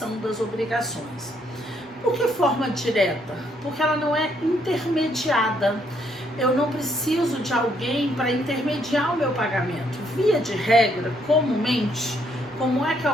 das obrigações. Por que forma direta? Porque ela não é intermediada. Eu não preciso de alguém para intermediar o meu pagamento. Via de regra, comumente, como é que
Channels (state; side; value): normal; both; correlation 0.71